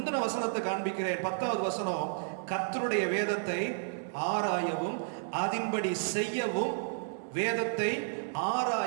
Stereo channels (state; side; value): silent; left; digital silence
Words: வசனத்தை காண்பிக்கிறேன். 10வது வசனம். கர்த்தருடைய வேதத்தை ஆராயவும் அதின்படி செய்யவும், வேதத்தை